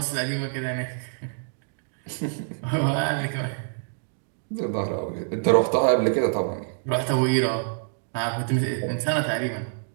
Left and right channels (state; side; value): silent; left; digital silence